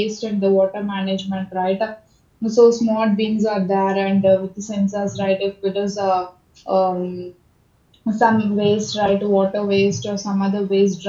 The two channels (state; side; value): identical; both; correlation 1.00